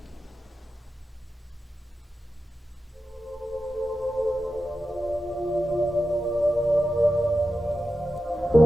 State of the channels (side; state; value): both; normal; correlation 0.91